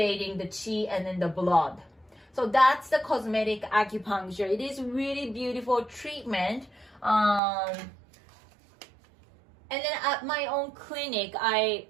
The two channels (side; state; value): left; drops out; at 7.4 s